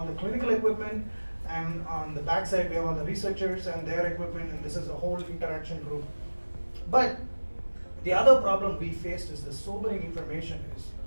the clinical equipment, and on the back side we have all the researchers and their equipment, and this is a whole interaction group. But the other problem we faced is the sobering information is,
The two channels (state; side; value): inverted; both; correlation -1.00